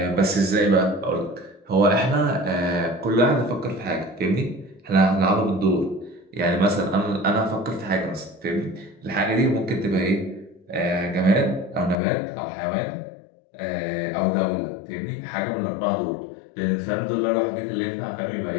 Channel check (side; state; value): right; drops out; at 12.0 s